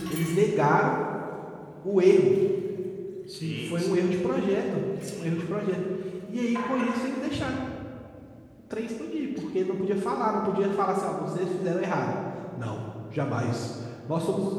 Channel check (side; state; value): both; identical; correlation 1.00